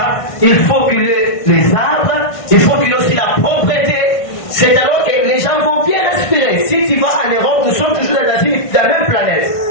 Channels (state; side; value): late; right; 1.5 ms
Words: il faut qu'il y ait les arbres, il faut qu'il y ait aussi la propreté. C'est alors que les gens vont bien respirer. Si tu vas en Europe, nous sommes toujours dans la même planète.